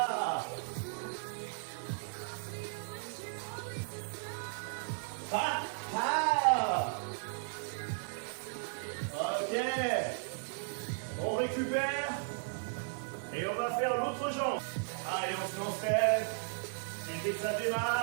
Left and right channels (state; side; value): silent; left; digital silence